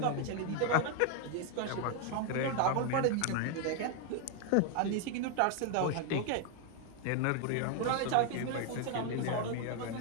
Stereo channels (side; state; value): both; different; correlation 0.00